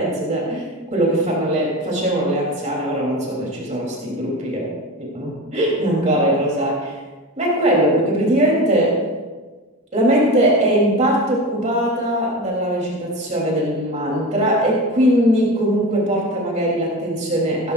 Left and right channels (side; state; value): both; normal; correlation 0.27